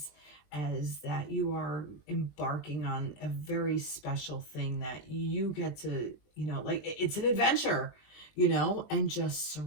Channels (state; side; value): late; right; 20 ms